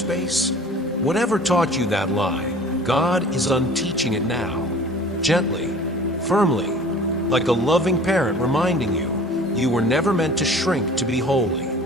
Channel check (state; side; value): normal; both; correlation 0.46